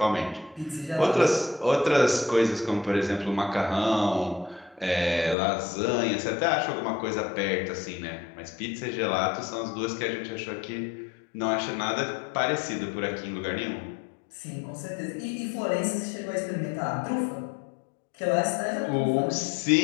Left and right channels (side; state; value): right; drops out; at 5.4 s